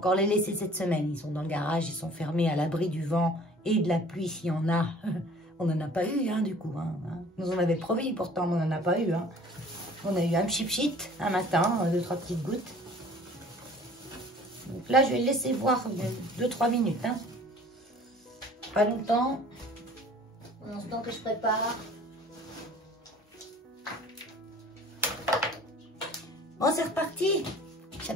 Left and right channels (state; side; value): normal; both; correlation 0.49